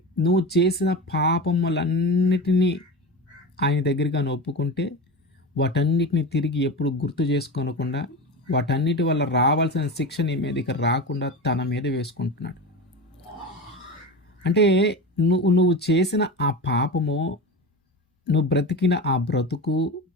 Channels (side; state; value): both; normal; correlation 0.26